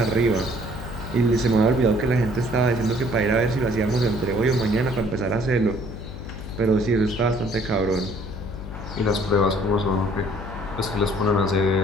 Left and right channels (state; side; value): noise; left; hum, 11 dB below the sound